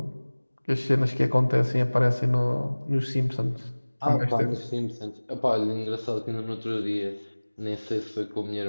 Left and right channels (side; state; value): both; inverted; correlation -1.00